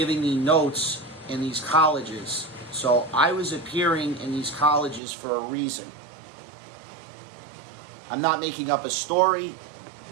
me notes in these colleges. So I was appearing in these colleges for a reason. I'm not making up a story.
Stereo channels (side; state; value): left; drops out; at 5.0 s